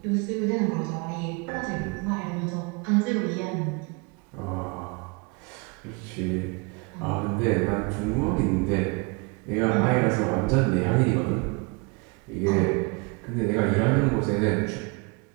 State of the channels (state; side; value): quieter; left; 30.2 dB